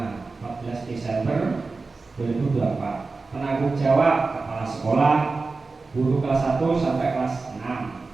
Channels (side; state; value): left; quieter; 3.9 dB